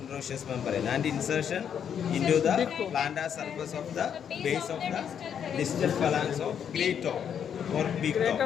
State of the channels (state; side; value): quieter; right; 8.3 dB